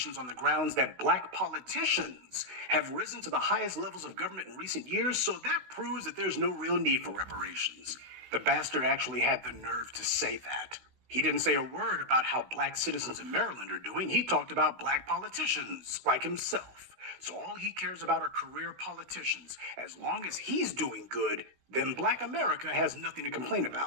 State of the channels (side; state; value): left; late; 16 ms